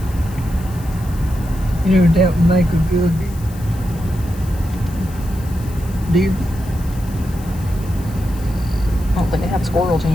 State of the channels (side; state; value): left; noise; hiss, 20 dB below the sound